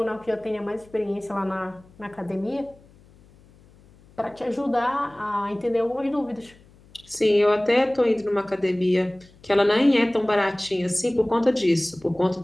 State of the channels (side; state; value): left; noise; hum, 27 dB below the sound